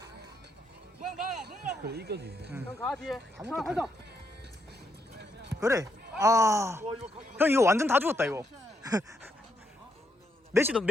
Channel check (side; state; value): both; normal; correlation 0.78